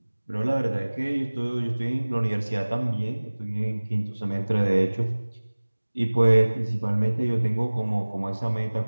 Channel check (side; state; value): both; inverted; correlation -1.00